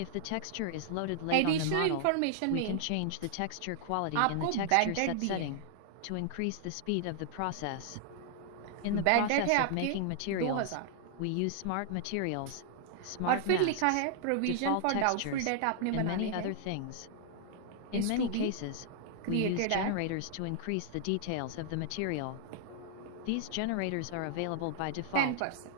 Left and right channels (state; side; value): different; both; correlation -0.01